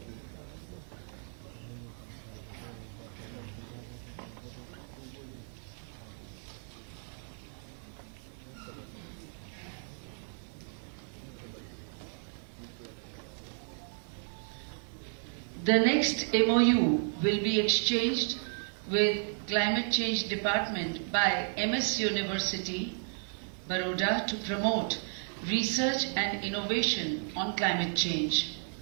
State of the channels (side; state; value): left; silent; 56 dB below the other